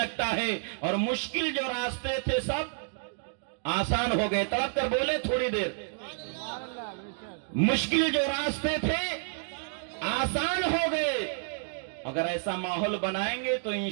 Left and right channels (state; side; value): silent; left; digital silence